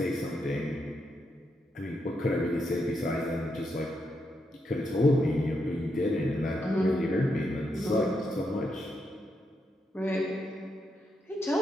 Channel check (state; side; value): normal; both; correlation 0.82